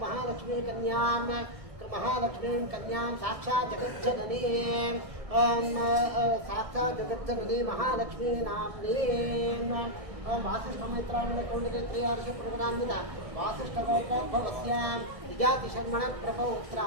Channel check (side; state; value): left; late; 1.7 ms